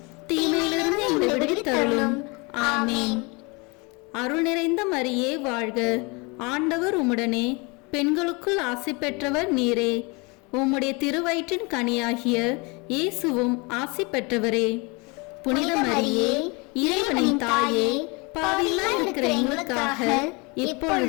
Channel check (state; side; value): quieter; right; 28.5 dB